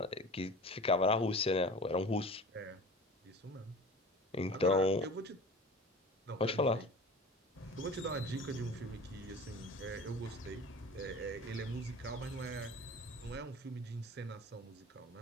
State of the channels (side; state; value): both; normal; correlation 0.39